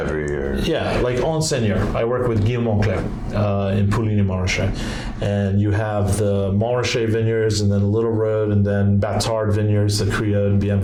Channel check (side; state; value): both; identical; correlation 1.00